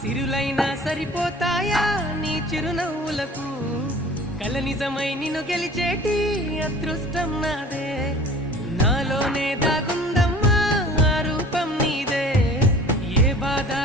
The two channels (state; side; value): normal; both; correlation 0.45